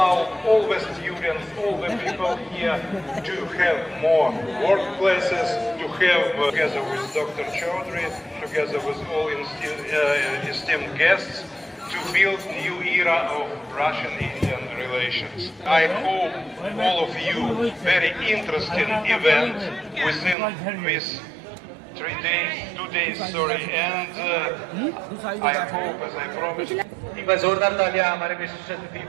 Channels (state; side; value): drops out; left; at 20.4 s